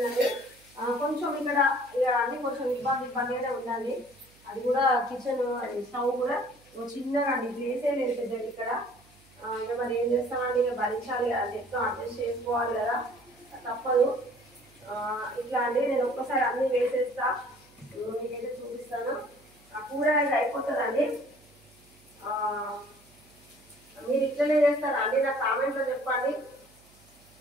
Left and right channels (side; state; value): right; noise; hum, 28 dB below the sound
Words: కొంచెం ఇక్కడ ఇక అన్ని కొంచెం ఇబ్బందిగానే ఉందండి. అది కూడా కిచెన్ స్టవ్ కూడా చిన్నగా అండి. ప్లేసే లేదు పెద్దది ఇక్కడ. ఇక మరి ఏం చేస్తామండి, ఇక భరించాలి కదా, చెప్తా అడ్జస్ట్ చేసుకోవాలి కదా, తప్పదు. ఇట్లా అండి నేను ఒక్కసారి అన్నీ వేసేస్తా. మీకైతే చూపిస్తాను. ఆ కూర అయితే అయిపోతుందండి. మీరు ఇట్లనే చేస్తారా అండి? నా కామెంట్లో చెప్పండి.